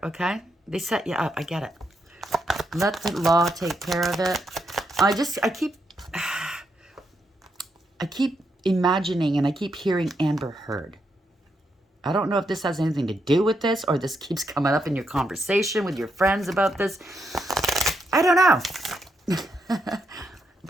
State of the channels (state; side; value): normal; both; correlation 0.80